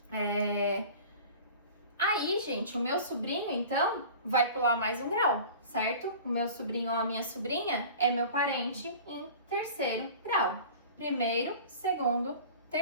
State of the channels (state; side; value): inverted; both; correlation -0.40